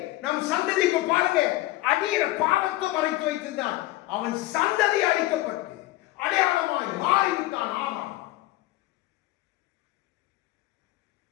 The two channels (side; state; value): right; quieter; 17.7 dB